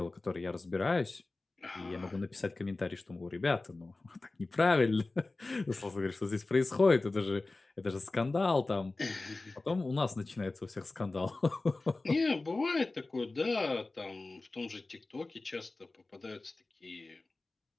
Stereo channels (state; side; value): quieter; right; 3.3 dB